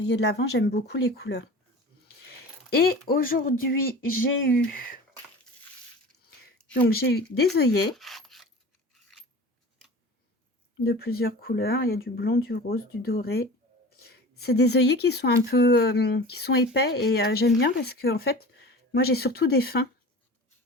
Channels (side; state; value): both; normal; correlation 0.37